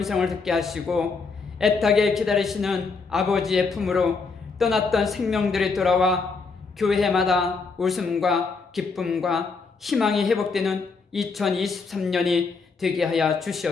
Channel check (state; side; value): quieter; right; 4.6 dB